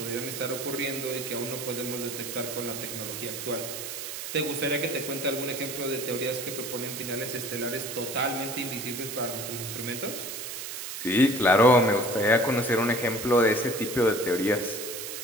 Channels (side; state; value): right; noise; hiss, 7 dB below the sound